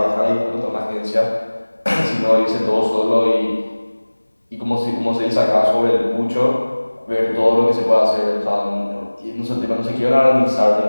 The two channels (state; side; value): inverted; both; correlation -1.00